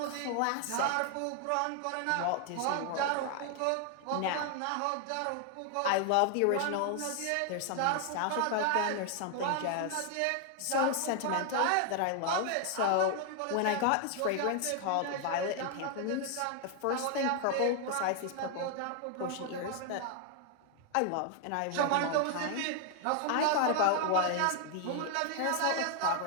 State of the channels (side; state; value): both; different; correlation 0.00